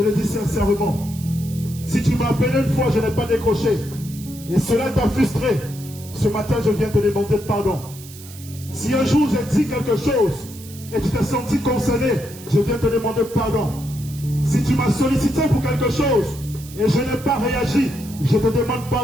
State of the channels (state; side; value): noise; right; hiss, 17 dB below the sound